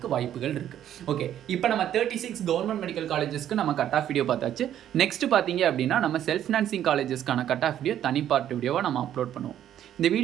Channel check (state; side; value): quieter; left; 10.9 dB